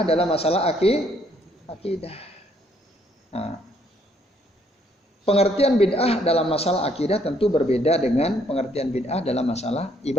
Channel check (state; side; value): normal; both; correlation 0.68